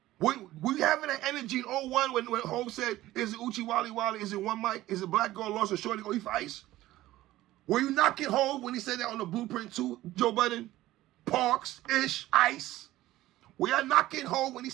We having that energy in 01 when Hov said, is it Uchi Wally Wally? Is it One Mic? Is it Black Girl Lost or Shorty Go Eat for Ice? Were you knocking Hov when he said that on the Blueprint 2, Joe Budden? Parks, Ish, Ice? Were y'all knocking Hov when he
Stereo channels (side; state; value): left; quieter; 15.9 dB